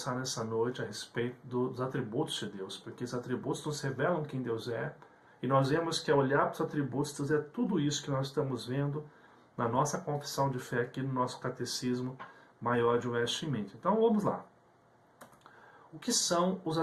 nessa noite a respeito dos atributos de Deus, porque os atributos nos revelam quem Deus é, e nós vemos que ao olhar para os atributos, Deus é tudo isso que nós estamos vendo na nossa confissão de fé aqui no nosso Catecismo Maior de Westminster. Então vamos lá. O que são os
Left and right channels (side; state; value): both; identical; correlation 1.00